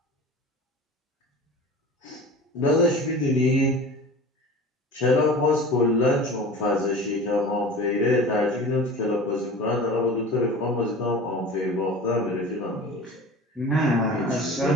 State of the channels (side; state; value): both; normal; correlation 0.37